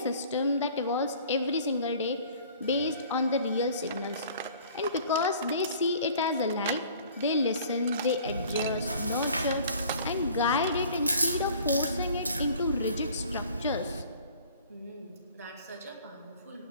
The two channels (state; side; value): inverted; both; correlation -0.49